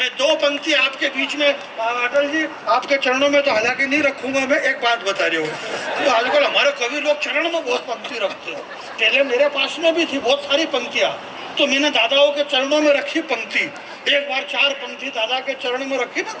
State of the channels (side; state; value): both; identical; correlation 1.00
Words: दो पंक्ति आपके बीच में, अटल जी आपके चरणों में तो हालांकि नहीं रखूंगा, मैं एक बात बता रही हूँ। तो आजकल हमारे कवि लोग चरण में बहुत पंक्ति रखते हैं। पहले मेरे पास में भी थी बहुत सारी पंक्तियाँ, तो मैंने दादाओं के चरणों में रखी पंक्ति। एक बार 4 पंक्ति दादा के चरण में रखी ना,